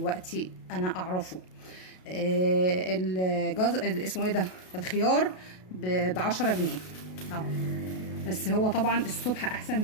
انا اعرفه. اسمه ايه ده، الخيار ب10 جنيه اهو. بس هو طبعا الصبح احسن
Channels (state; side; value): late; right; 33 ms